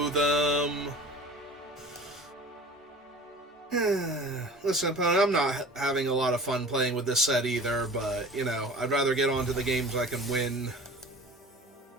them. Listen, opponent, I'm not having a lot of fun playing with this set either, but, you know, I'd rather get on to the games I can win.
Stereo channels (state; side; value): normal; both; correlation 0.41